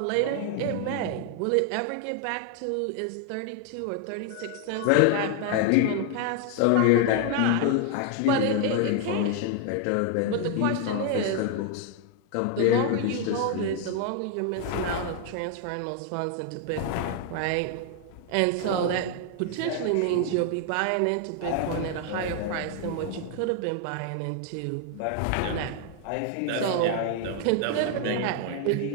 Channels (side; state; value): both; different; correlation 0.00